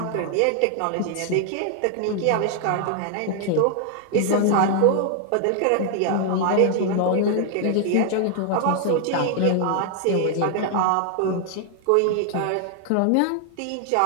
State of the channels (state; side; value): different; both; correlation 0.00